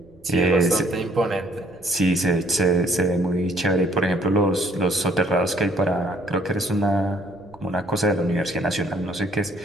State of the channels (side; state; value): right; noise; rumble, 27 dB below the sound